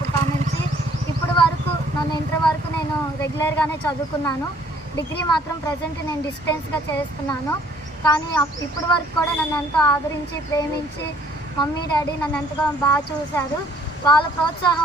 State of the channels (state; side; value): normal; both; correlation 0.60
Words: నుంచి ఇప్పటి వరకు నన్ను ఇంటర్ వరకు నేను రెగ్యులర్గానే చదువుకున్నాను. డిగ్రీ మాత్రం ప్రజెంట్ నేను డిస్టెన్స్గా చేస్తున్నాను. కానీ ఇప్పటి వరకు కూడా నన్ను ఎంతో ఆదరించి ప్రేమించి మమ్మీ డాడీ నన్ను ఎంతగా బాగా చూశారు. వాళ్ళ